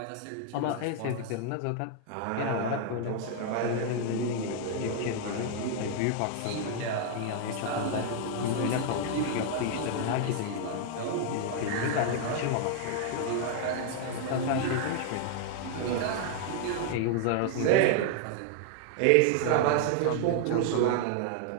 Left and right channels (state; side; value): different; both; correlation 0.00